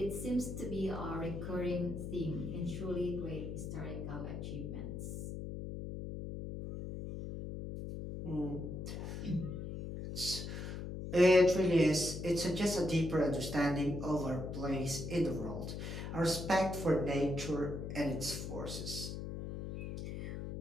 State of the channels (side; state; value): left; noise; hum, 6 dB below the sound